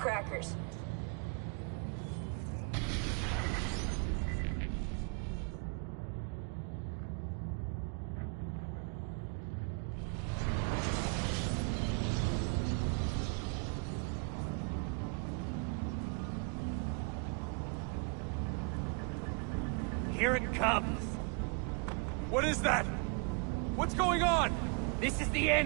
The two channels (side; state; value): left; quieter; 35.4 dB